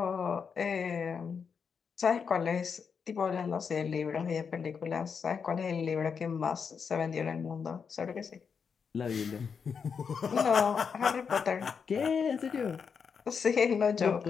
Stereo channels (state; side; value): quieter; right; 6.2 dB